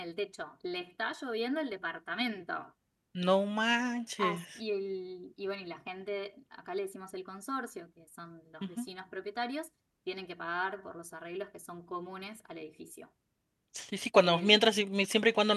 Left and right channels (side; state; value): both; identical; correlation 1.00